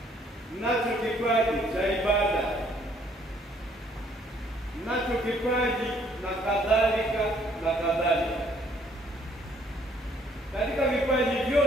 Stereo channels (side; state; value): both; normal; correlation 0.64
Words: mnacho kipaji cha ibada, mnacho kipaji na kadhalika na kadhalika. Katika vipaji